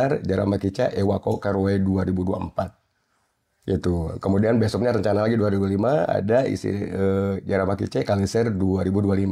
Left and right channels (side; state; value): both; identical; correlation 1.00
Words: Jeramah Kice Ewako Karowe 2024. Itu. Kemudian besoknya rencana lagi 2005 ada Jeramah Kice Kaliser